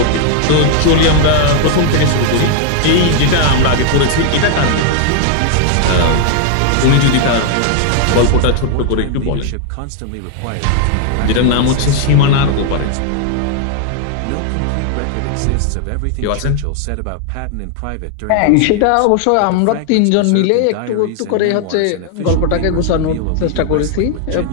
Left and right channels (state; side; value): different; both; correlation 0.00